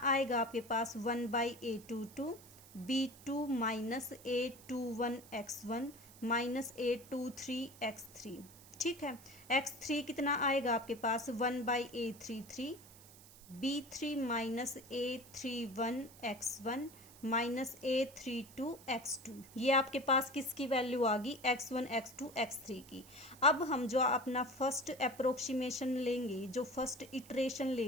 आएगा आपके पास? 1/a22 b2 minus a21 x1 minus a23 x3। ठीक है, x3 कितना आएगा आपके पास? 1/a33 b3 minus a31 x1 -a32x2, ये आपके पास किसकी वैल्यू आ गई, x1 x2 x3 की। अब हम जो अपना फर्स्ट अप्रोक्सीमेशन लेंगे, जो फर्स्ट इटरेशन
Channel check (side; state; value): right; noise; hiss, 20 dB below the sound